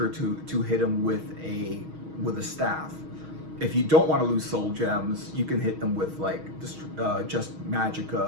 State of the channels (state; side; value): late; left; 6.3 ms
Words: to hit them with a staff. If you don't want to lose soul gems, you can hit them with like just